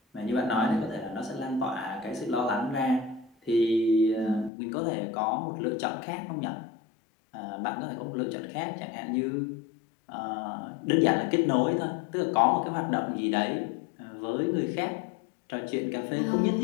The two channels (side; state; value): right; drops out; at 4.5 s